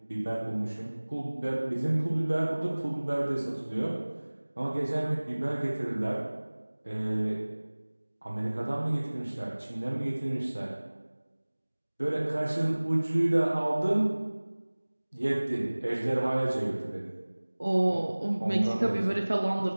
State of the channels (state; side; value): inverted; both; correlation -1.00